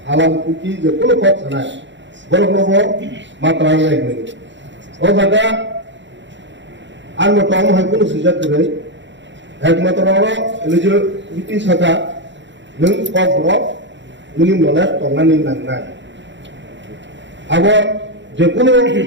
আলাম কুকি যে কোনো পথ সানায় বড় বড় মাত্রা লাগবে ও জায়গা আর মতো হয় কোনো সুযোগ করে একমাত্র যে ব্রিটিশ হাকা নং ককবরক নুনি নলে টঙ্গানি নাंनाय আবার যে কোনো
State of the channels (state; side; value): late; left; 0.53 ms